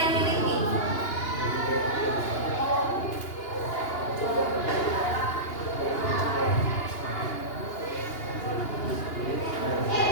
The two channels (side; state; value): right; late; 2.8 ms